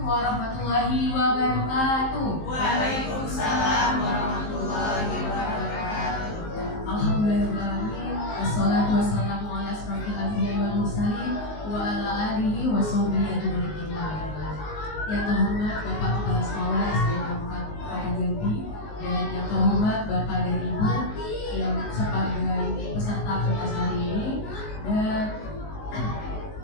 warahmatullahi wabarakatuh. Waalaikumsalam warahmatullahi wabarakatuh. Alhamdulillahirrahmanirrahim. Wassalatu wassalamu ala asrofil anbiya'i wal mursalin wa ala alihi wa sahbihi ajma'in. Yang terhormat Bapak Kepala Sekolah SD 4 Kota Jambi dan yang terhormat Bapak dan Ibu yang sebagai peserta pentas hari ini, dan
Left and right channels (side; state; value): right; late; 19 ms